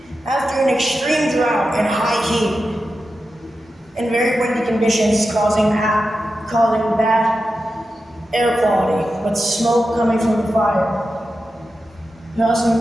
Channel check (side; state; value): both; normal; correlation 0.91